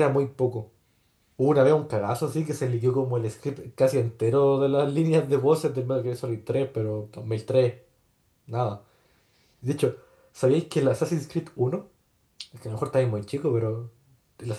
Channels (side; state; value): both; identical; correlation 1.00